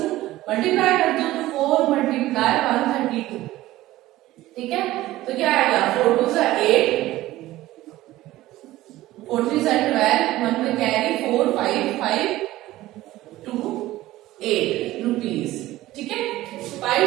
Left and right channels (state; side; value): quieter; left; 16.3 dB